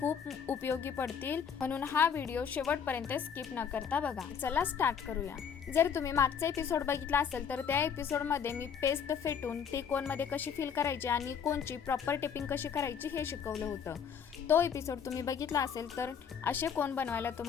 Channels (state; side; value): quieter; right; 7.3 dB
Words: उपयोगी पडतील, म्हणून हा व्हिडिओ शेवटपर्यंत स्किप न करता बघा। चला स्टार्ट करूया। जर तुम्ही मागचा एपिसोड बघितला असेल तर त्या एपिसोडमध्ये मी पेस्ट फेटून ती कोनमध्ये कशी फिल करायची आणि कोनची प्रॉपर टिपिंग कशी करायची हे शिकवलं होतं। तो एपिसोड तुम्ही बघितला असेल तर असे कोन बनवायला